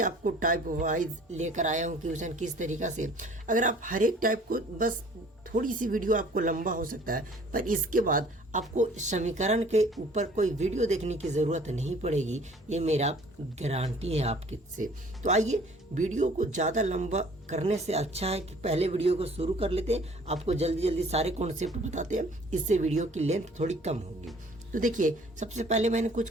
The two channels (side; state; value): both; normal; correlation 0.53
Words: आपको टाइप वाइज लेकर आया हूँ क्वेश्चन किस तरीक़ा से। अगर आप हर एक टाइप को, बस थोड़ी सी वीडियो आपको लंबा हो सकता है, पर इसके बाद आपको समीकरण के ऊपर कोई वीडियो देखने की ज़रूरत नहीं पड़ेगी, ये मेरा गारंटी है आपके से। तो आइए, वीडियो को ज़्यादा लंबा करने से अच्छा है कि पहले वीडियो को शुरू कर लेते हैं, आपको जल्दी जल्दी सारे कॉन्सेप्ट बताते हैं, इससे वीडियो की लेंथ थोड़ी कम होगी। तो देखिए, सबसे पहले मैंने कुछ